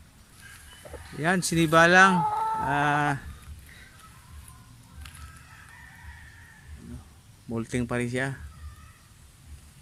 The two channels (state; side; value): identical; both; correlation 1.00